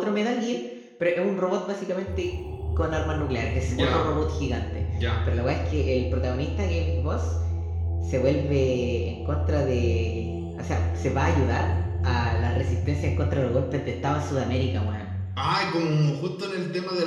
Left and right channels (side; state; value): both; identical; correlation 1.00